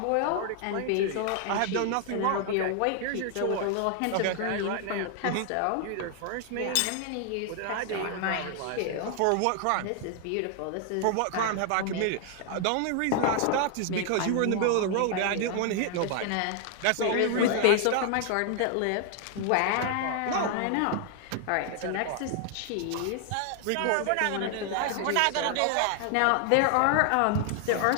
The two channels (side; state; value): both; different; correlation 0.00